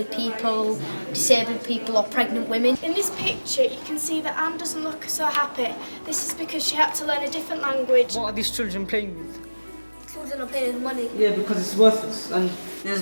people, disabled people or pregnant women. In this picture you can see that Anne doesn't look so happy. This is because she had to learn a different language. What are these children playing with? Children are paying money. Yeah, because it's worthless. And there's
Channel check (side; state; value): both; inverted; correlation -1.00